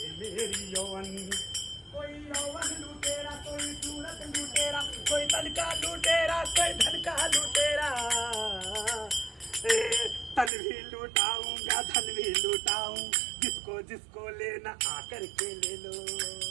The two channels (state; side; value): drops out; left; at 10.5 s